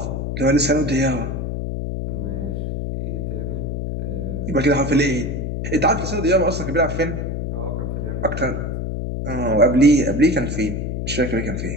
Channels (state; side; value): noise; left; hum, 3 dB below the sound